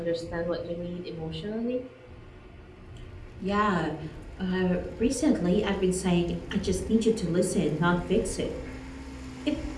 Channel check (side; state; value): both; identical; correlation 1.00